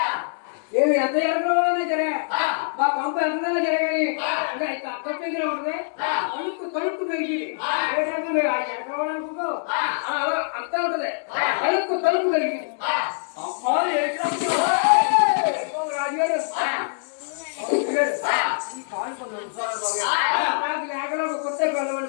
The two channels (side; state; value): right; silent; digital silence